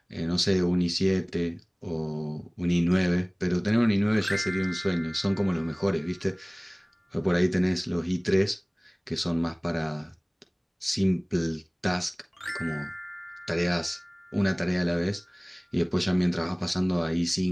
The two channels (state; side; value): identical; both; correlation 1.00